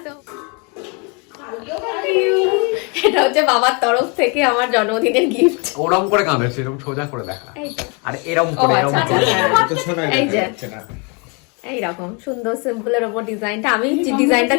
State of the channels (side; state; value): right; quieter; 32.8 dB